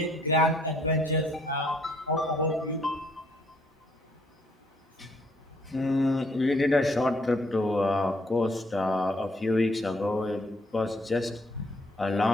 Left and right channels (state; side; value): normal; both; correlation 0.67